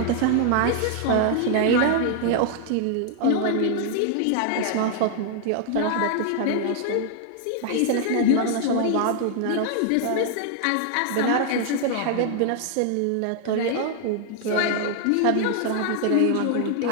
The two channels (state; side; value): different; both; correlation 0.00